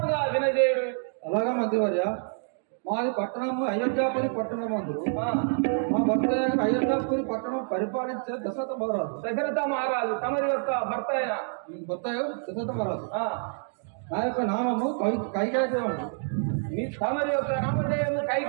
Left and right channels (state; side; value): silent; left; 60 dB below the other